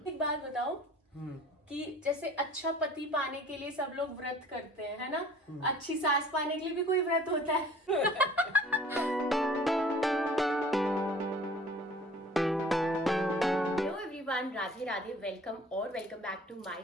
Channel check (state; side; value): normal; both; correlation 0.49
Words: एक बात बताओ कि जैसे अच्छा पति पाने के लिए सब लोग व्रत करते हैं, है ना? अच्छी सास पाने के लिए भी कोई व्रत होता है? Hello everyone, Radhe Radhe, welcome back to my